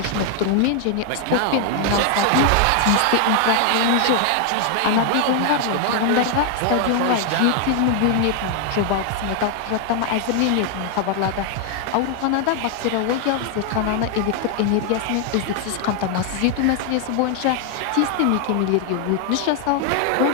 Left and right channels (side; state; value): both; different; correlation 0.00